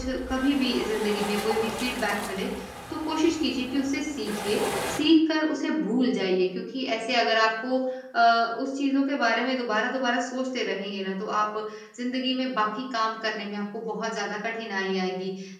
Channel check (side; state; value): both; identical; correlation 1.00